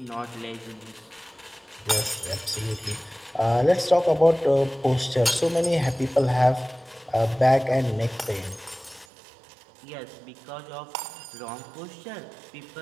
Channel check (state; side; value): drops out; left; at 9.1 s